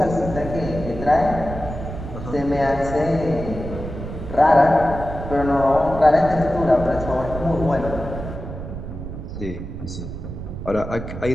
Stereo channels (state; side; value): noise; right; rumble, 8 dB below the sound